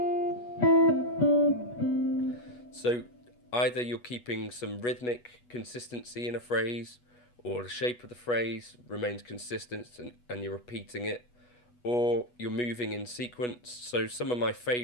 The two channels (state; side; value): late; right; 8.2 ms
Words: So either you're keeping some rhythmic consistency in a phrase, or the shape of the phrase remains consistent and you're repeating it, or you're moving in sequence. So some of my